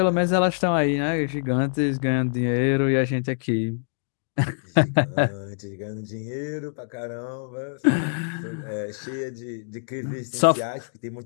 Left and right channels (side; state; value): right; silent; digital silence